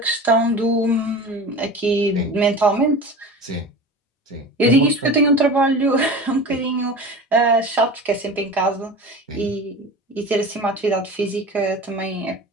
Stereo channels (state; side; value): normal; both; correlation 0.33